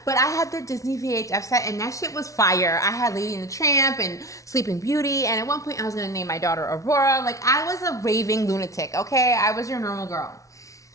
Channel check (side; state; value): right; late; 0.16 ms